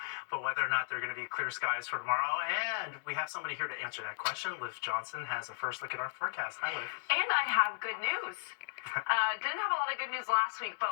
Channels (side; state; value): right; silent; digital silence